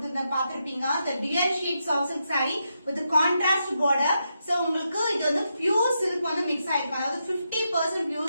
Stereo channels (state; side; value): inverted; both; correlation -0.84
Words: பாத்திருப்பீங்க. இந்த dual sheet soft silk sari with contrast border. So உங்களுக்கு இது வந்து பியூர் சில்க் வந்து மிக்ஸ் ஆயிருக்கும். அதாவது 50%